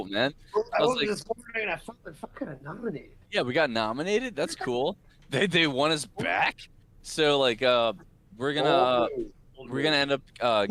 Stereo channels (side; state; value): both; identical; correlation 1.00